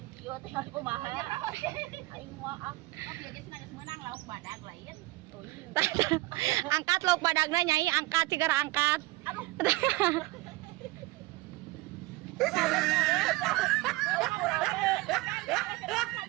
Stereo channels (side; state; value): left; quieter; 20.7 dB